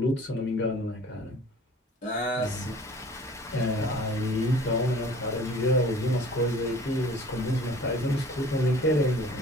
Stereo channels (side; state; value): both; normal; correlation 0.48